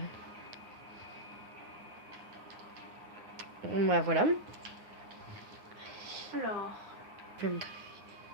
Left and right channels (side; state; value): left; late; 9.6 ms